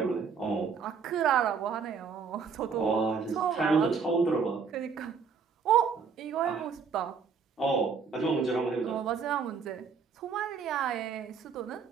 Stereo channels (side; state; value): left; quieter; 5.8 dB